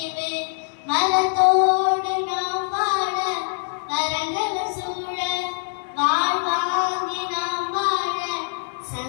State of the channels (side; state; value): right; silent; 63 dB below the other